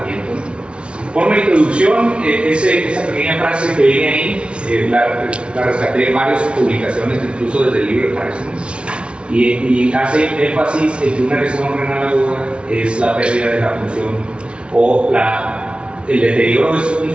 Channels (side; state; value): left; late; 0.058 ms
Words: Por una introducción, esa pequeña frase que viene ahí, la rescaté de varias publicaciones, incluso desde el libro de Parkinson, y hace énfasis en que una lesión renal aguda es la pérdida de la función o el deterioro de su